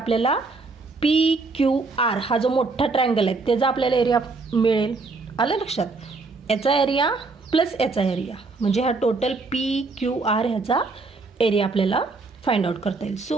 PQR हा जो मोठा ट्रायंगल आहे त्याचा आपल्याला एरिया मिळेल. आलं लक्षात, याचा एरिया प्लस याचा एरिया म्हणजे हा टोटल PQR ह्याचा एरिया आपल्याला फाइंड आउट करता येईल. So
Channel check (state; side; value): quieter; left; 3.8 dB